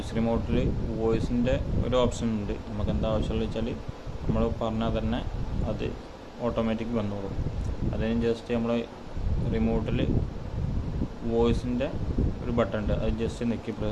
റിമോട്ടിൽ വോയിസിൻ്റെ ഒരു ഓപ്ഷൻ ഉണ്ട്. നമുക്ക് എന്താ ആവശ്യമുള്ള വെച്ചാൽ നമ്മൾ പറഞ്ഞാൽ തന്നെ അത് ഓട്ടോമാറ്റിക് വന്നോളും. അതിന് ജസ്റ്റ് നമ്മൾ റിമോട്ടിൽ വോയിസിൻ്റെ ഒരു ബട്ടൺ ഉണ്ട്, അത് ജസ്റ്റ് നെക്കി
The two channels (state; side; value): identical; both; correlation 1.00